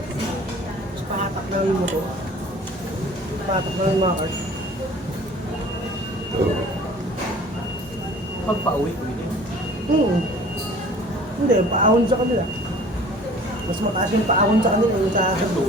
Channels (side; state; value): both; normal; correlation 0.47